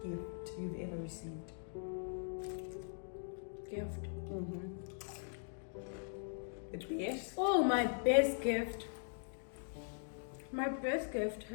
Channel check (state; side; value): silent; right; digital silence